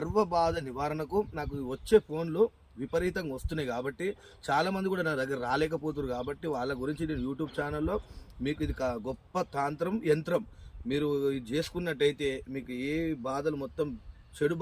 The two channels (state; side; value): identical; both; correlation 1.00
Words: బాధ నివారణకు నాకు వచ్చే ఫోన్లు విపరీతంగా వస్తున్నాయి. కాబట్టి చాలామంది కూడా నా దగ్గర రాలేకపోతున్నారు. కాబట్టి వాళ్ళ గురించి నేను యూట్యూబ్ ఛానల్లో మీకు ఇది గొప్ప తాంత్రం యంత్రం మీరు ఇది చేసుకున్నట్టయితే మీకు ఏ బాధలు మొత్తం, చెడు